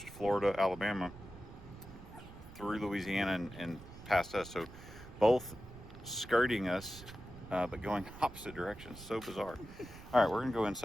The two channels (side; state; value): right; noise; rumble, 16 dB below the sound